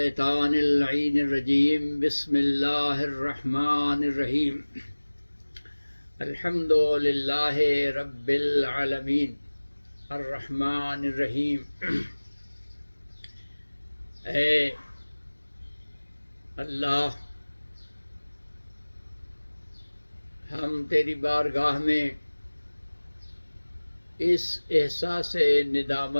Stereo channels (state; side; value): inverted; both; correlation -1.00